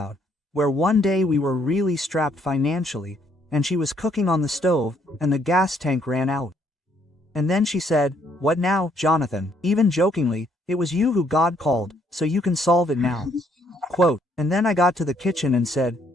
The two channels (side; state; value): both; normal; correlation 0.68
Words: where one day we were really strapped financially, and she was cooking on the stove, and the gas tank ran out. And then she said, "What now, Jonathan?" Even jokingly, "It was you who God called, so you can solve it now." Quote, and then I got to the kitchen and said,